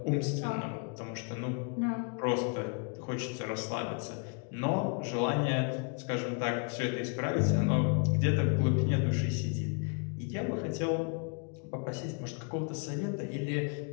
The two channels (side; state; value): right; quieter; 38.0 dB